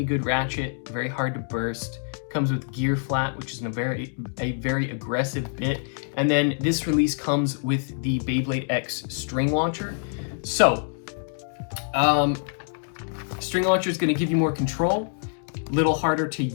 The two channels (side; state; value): right; silent; digital silence